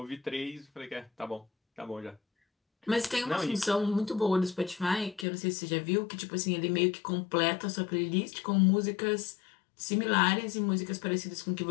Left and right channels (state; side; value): drops out; right; at 5.2 s